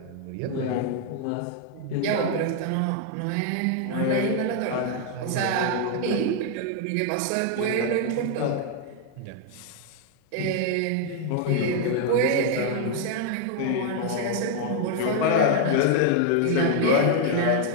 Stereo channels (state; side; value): different; both; correlation 0.00